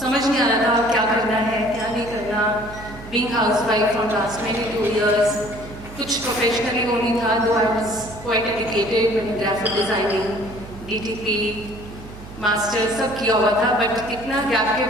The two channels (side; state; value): right; noise; hum, 15 dB below the sound